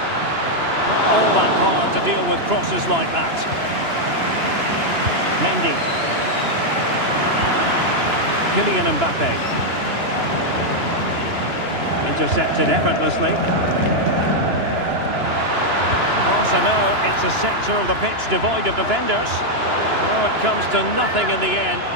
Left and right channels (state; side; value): late; left; 2.9 ms